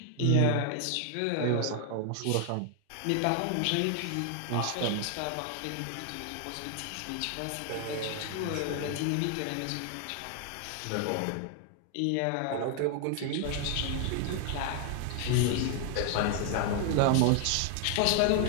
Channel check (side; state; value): both; different; correlation 0.00